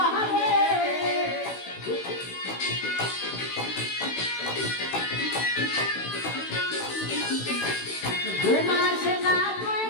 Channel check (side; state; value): right; late; 16 ms